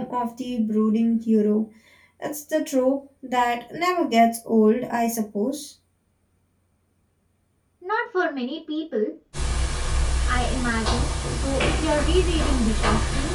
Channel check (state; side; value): identical; both; correlation 1.00